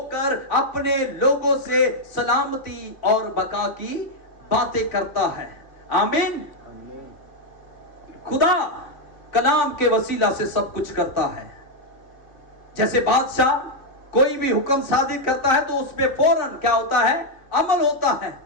अपने लोगों से सलामती और बका की बातें करता है। आमीन। खुदा कलाम के वसीला से सब कुछ करता है। जैसे बादशाह कोई भी हुक्म सादिर करता है तो उसमें फौरन क्या होता है, अमल होता है।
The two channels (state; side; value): late; right; 3.0 ms